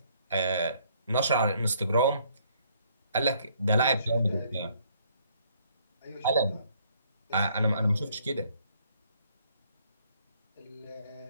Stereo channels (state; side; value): inverted; both; correlation -0.65